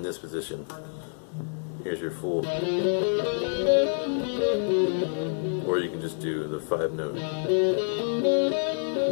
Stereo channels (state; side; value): silent; right; digital silence